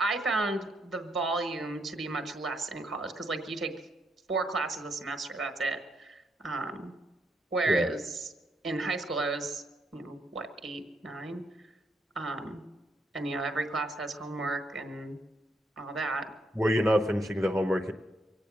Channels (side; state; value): both; normal; correlation 0.76